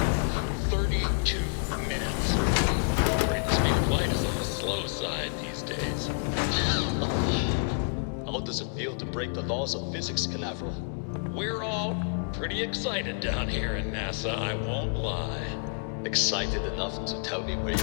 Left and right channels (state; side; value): silent; right; digital silence